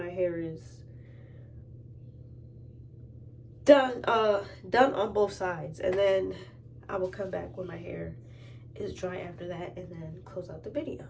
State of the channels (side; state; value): both; identical; correlation 1.00